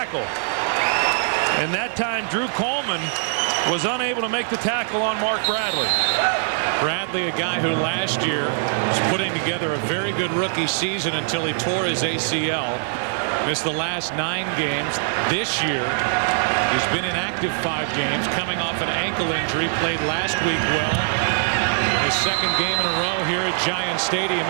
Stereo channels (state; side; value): silent; left; digital silence